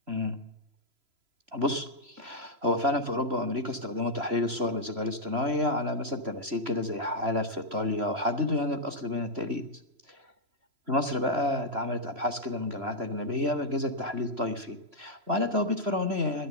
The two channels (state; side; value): late; left; 3.0 ms